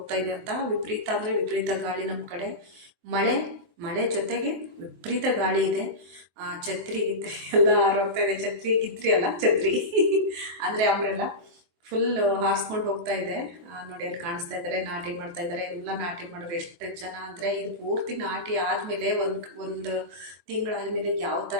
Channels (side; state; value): left; late; 23 ms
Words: ಇದೆ ಅಂತ. ವಿಪರೀತ ಅಂದರೆ ವಿಪರೀತ ಗಾಳಿ ನಮ್ಮ ಕಡೆ. ಮಳೆ ಜೊತೆಗೆ ವಿಪರೀತ ಗಾಳಿ ಇದೆ. ಛತ್ರಿ ಗಿತ್ರಿ ಎಲ್ಲ ಹಾರೋಗ್ತಾ ಇದೆ. ಛತ್ರಿ ಗಿತ್ರಿ ಅಲ್ಲ, ಛತ್ರಿ ಅಂದರೆ ಅಂಬ್ರೆಲ್ಲ ಫುಲ್ ಹಾರಿಸ್ಕೊಂಡು ಹೋಗ್ತಾ ಇದೆ ನೋಡಿ. ಅಲ್ಲಿ ಕಾಣಿಸ್ತಾ ಇದ್ದಾರೆ, ನಾಟಿ ಮಾಡ್ತಾ ಇದ್ದಾರೆ. ಎಲ್ಲ ನಾಟಿ ಮಾಡೋರು ಎಷ್ಟು ಜನ ಅಂದರೆ, ಇದು ಪೂರ್ತಿ ನಾಟಿ ಆದಮೇಲೆ ಒಂದು ತಿಂಗಳಾದಮೇಲೆ ಯಾವ